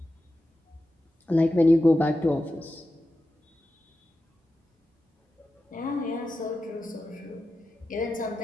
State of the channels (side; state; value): both; normal; correlation 0.91